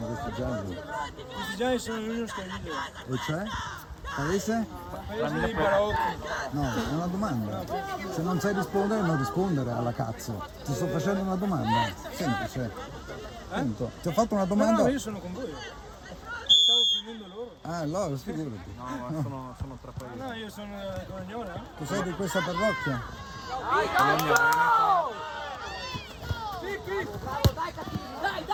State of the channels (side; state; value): both; identical; correlation 1.00